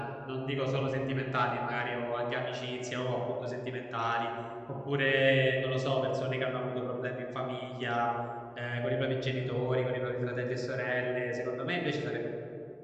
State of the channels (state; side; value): identical; both; correlation 1.00